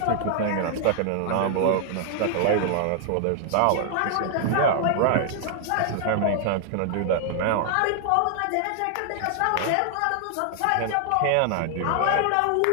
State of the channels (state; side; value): different; both; correlation 0.00